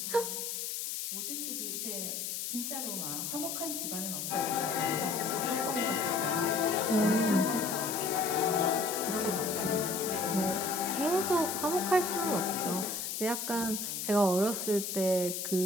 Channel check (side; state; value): left; noise; hiss, 4 dB below the sound